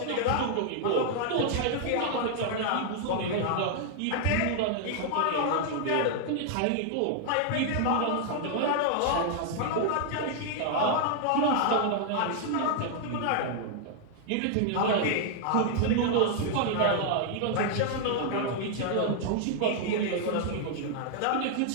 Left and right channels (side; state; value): both; different; correlation 0.00